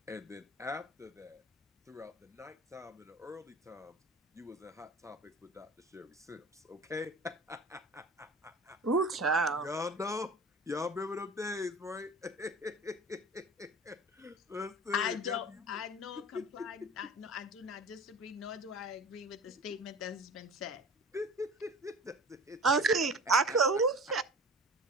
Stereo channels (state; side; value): normal; both; correlation 0.38